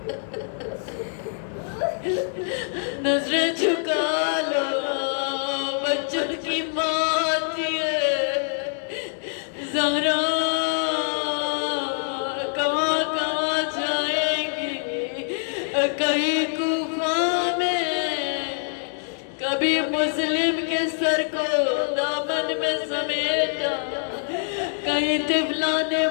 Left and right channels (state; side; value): silent; right; digital silence